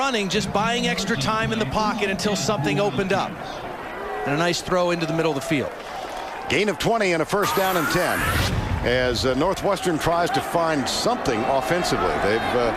just buying extra time in the pocket until something opened up. And a nice throw into the middle of the field. Gain of 20 and a first down and 10 as Northwestern tries to find something offensively. They've,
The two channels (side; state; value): both; identical; correlation 1.00